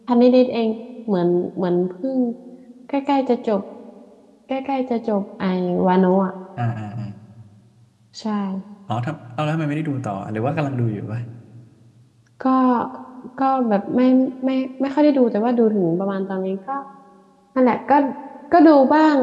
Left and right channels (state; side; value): identical; both; correlation 1.00